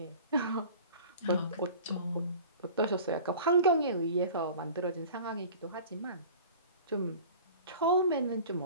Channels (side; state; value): both; inverted; correlation -0.42